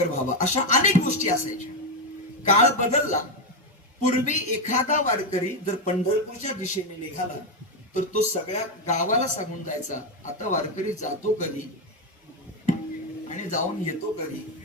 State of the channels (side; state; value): both; normal; correlation 0.08